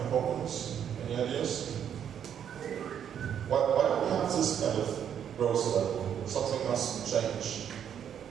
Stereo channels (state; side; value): quieter; left; 8.9 dB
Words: problems? Any ideas? Why do we have this kind of growth level? Something must change.